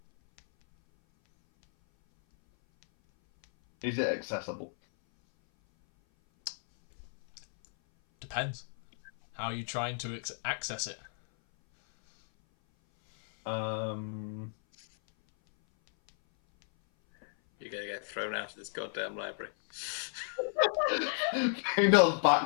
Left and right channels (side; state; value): right; silent; 56 dB below the other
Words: Is it accessible? Depends. How are you trying to access it? You're gonna get thrown out of this goddamn library. Faendal's